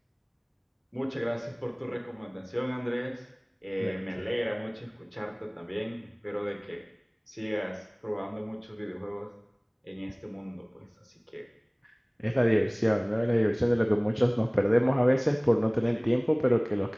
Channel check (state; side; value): identical; both; correlation 1.00